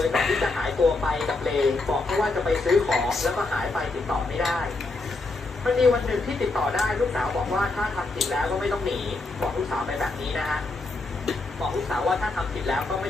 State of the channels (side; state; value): right; quieter; 3.3 dB